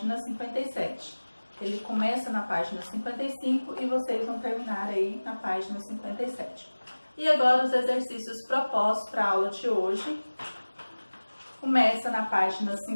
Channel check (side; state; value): both; inverted; correlation -1.00